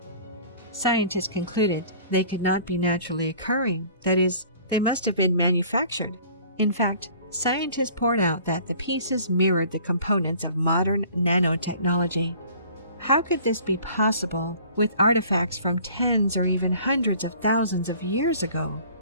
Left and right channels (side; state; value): both; inverted; correlation -0.50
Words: Scientists concluded they could not be naturally occurring, that is, they must have been manufactured. In fact, scientists poured out that the pieces mirrored the components of modern nanotechnology. How could this be possible with artifacts from tens or even hundreds of thousands of years ago?